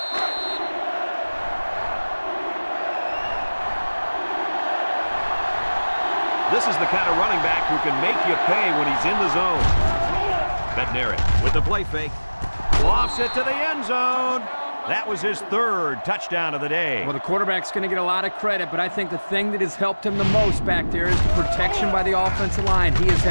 This is the kind of running back who can make you pay when he's in the zone. Bednarik with the play fake. Lofts it to the end zone. That was his 3rd touchdown of the day. Well, the quarterback's going to get a lot of credit, but I think the thing that has helped him the most back there is the protection by the offensive line. He has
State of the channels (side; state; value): both; inverted; correlation -1.00